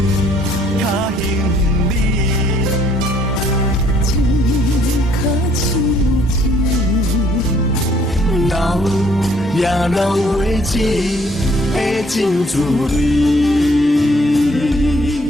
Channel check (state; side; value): normal; both; correlation 0.63